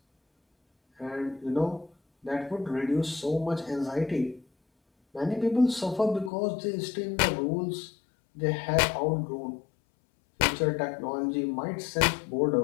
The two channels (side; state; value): right; drops out; at 6.3 s